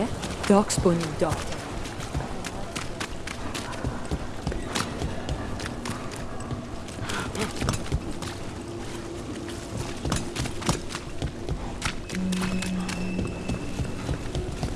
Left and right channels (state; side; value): identical; both; correlation 1.00